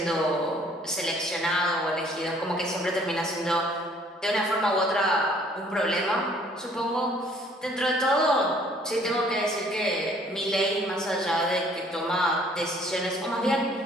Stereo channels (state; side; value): normal; both; correlation 0.59